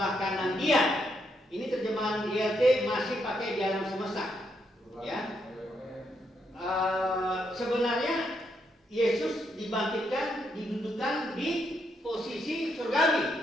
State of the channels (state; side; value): normal; both; correlation 0.78